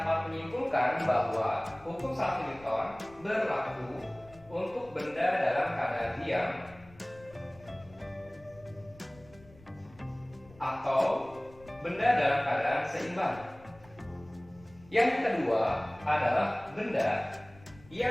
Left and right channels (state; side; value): noise; left; rumble, 23 dB below the sound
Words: menyimpulkan bahwa hukum 1 Newton berlaku untuk benda dalam keadaan diam atau benda dalam keadaan seimbang. Yang kedua adalah benda